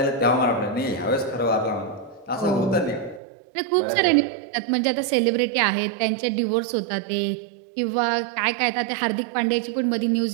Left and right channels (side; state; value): left; drops out; at 3.2 s